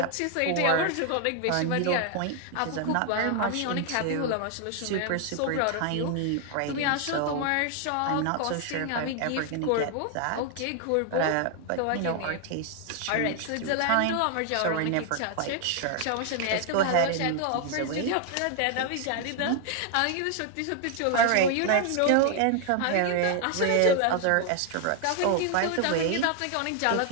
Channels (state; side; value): different; both; correlation 0.00